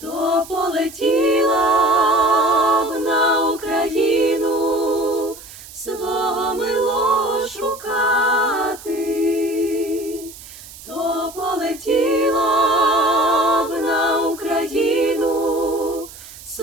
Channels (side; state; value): right; noise; hiss, 17 dB below the sound